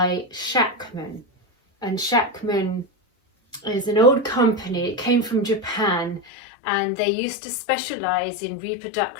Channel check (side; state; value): right; drops out; at 6.2 s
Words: Shackman, and Shackman is an old company. It came from Japan, and they used to specialize in